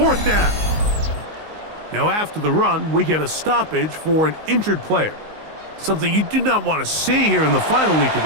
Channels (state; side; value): late; left; 19 ms